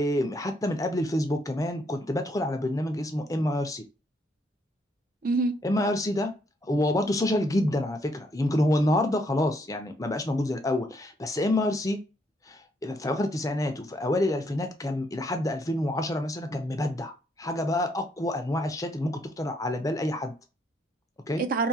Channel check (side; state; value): both; normal; correlation 0.71